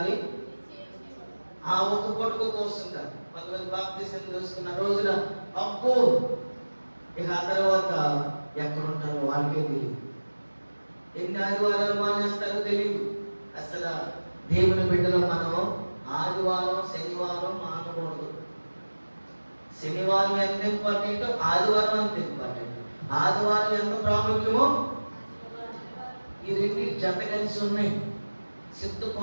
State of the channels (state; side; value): inverted; both; correlation -1.00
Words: ఆ ఒక పొట్టుకు కోస్తుంటారు. కొంతమంది బాప్తిసం తీసుకున్న రోజున అబ్బో ఇక ఆ తర్వాత ఎక్కడుంటారో వాళ్ళకే తెలియదు. ఎన్ని ఆదివారాలు మానేస్తారో తెలియదు. అసలు దేవుని బిడ్డలో మనం ఆదివారం శనివారం మానకూడదు. శనివారం ఎంత ఇంపార్టెంట్, ఆదివారం అంత ఇంపార్టెంట్. ఆదివారం ఎంత ప్రాముఖ్యమో ఈ రెండు జత కలిసి ఉన్నాయి.